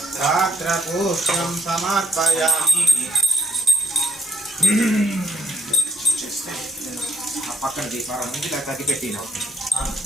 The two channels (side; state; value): both; normal; correlation 0.74